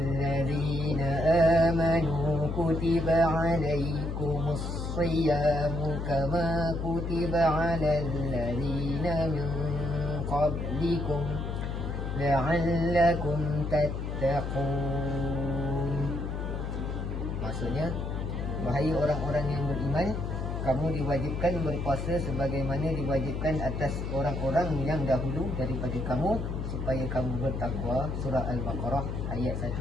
amanu kutiba 'alaikumus siyamu kama kutiba 'alal ladzina min qablikum la'allakum tattaqun. Maksudnya, wahai orang-orang yang beriman, kamu diwajibkan berpuasa sebagaimana diwajibkan atas orang-orang yang dahulu daripada kamu supaya kamu bertakwa. Surah Al-Baqarah ayat 1.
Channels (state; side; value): noise; left; hum, 4 dB below the sound